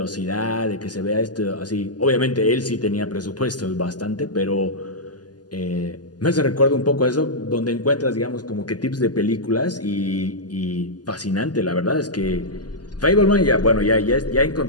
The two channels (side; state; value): right; late; 0.69 ms